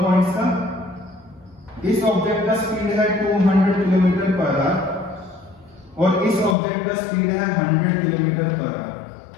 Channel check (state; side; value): drops out; right; at 6.6 s